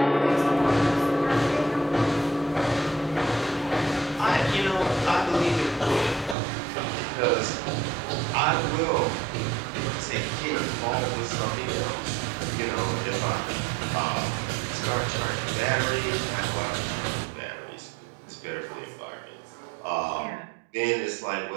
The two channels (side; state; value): left; drops out; at 6.4 s